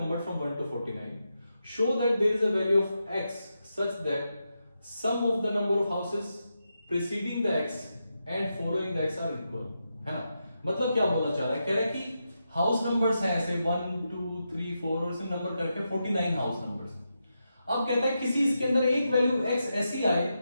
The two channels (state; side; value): inverted; both; correlation -0.86